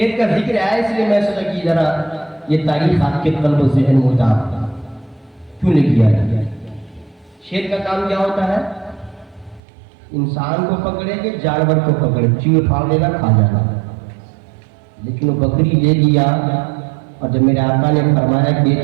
کا ذکر ہے اس لیے میں سوچا کہ ذرا یہ تاریخ آپ کے قلب و ذہن میں اتار کیوں لے کیا ہے؟ شیر کا کام کیا ہوتا ہے؟ انسان کو پکڑے کہ جانور کو پکڑے، چیڑ پھاڑ لینا، کھا جانا. لیکن وہ بکری لے لیا، اور جب میرے آقا نے فرمایا کہ یہ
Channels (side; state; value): left; drops out; at 9.6 s